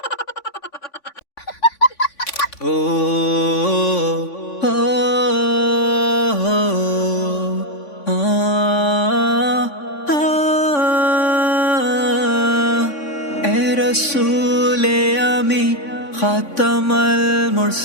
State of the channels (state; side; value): late; right; 3.5 ms